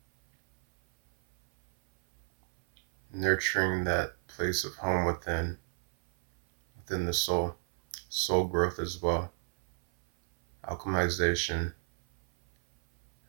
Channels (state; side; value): silent; left; 57 dB below the other